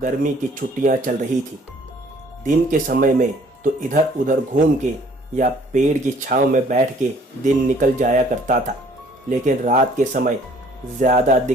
की छुट्टियां चल रही थी। दिन के समय में तो इधर उधर घूम के या पेड़ की छांव में बैठ के दिन निकल जाया करता था, लेकिन रात के समय ज़्यादा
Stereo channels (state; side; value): normal; both; correlation 0.58